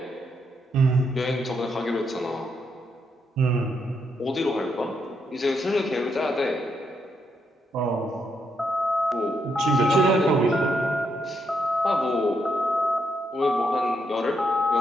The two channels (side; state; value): both; normal; correlation 0.78